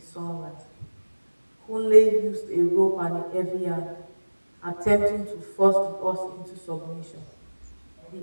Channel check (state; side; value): inverted; both; correlation -1.00